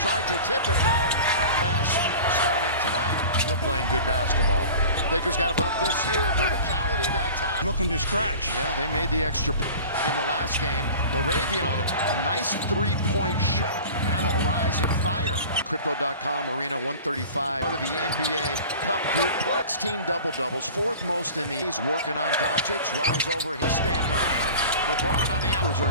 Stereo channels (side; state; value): both; inverted; correlation -0.39